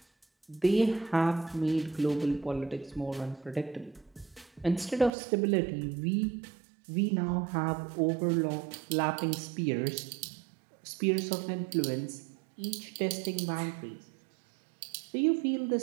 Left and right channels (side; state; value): left; drops out; at 5.1 s